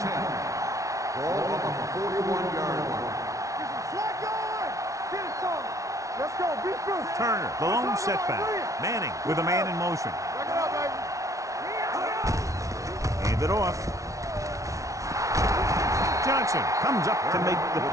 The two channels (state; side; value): late; left; 0.16 ms